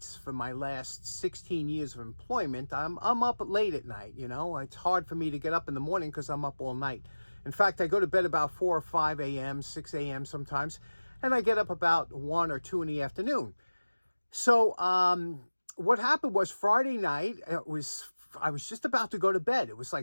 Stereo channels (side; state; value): both; inverted; correlation -1.00